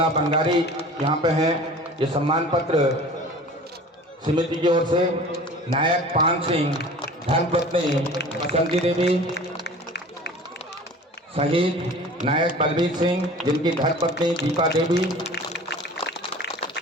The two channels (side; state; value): both; normal; correlation 0.42